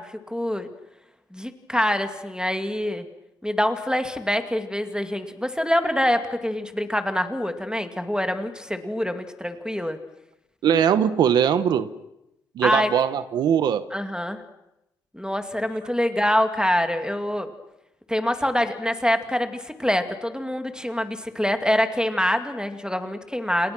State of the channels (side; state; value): both; normal; correlation 0.81